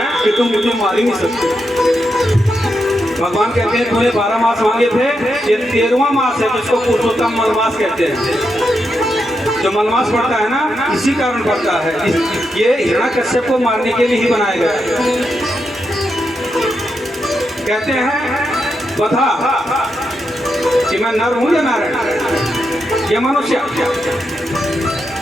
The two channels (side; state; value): both; normal; correlation 0.84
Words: कि तुम मुझे मार ही नहीं सकते। भगवान कहते हैं तूने 12 मास मांगे थे, ये 13वां मास है जिसको पुरुषोत्तम मलमास कहते हैं। जो मलमास पड़ता है ना इसी कारण पड़ता है। ये हिरण्याकश्यप को मारने के लिए ही बनाया गया है। कहते हैं बता कि मैं नर हूं या नारायण या मनुष्य?